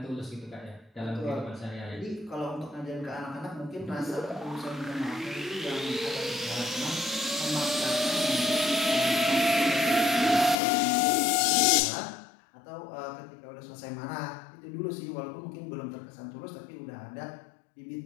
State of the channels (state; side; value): drops out; right; at 10.6 s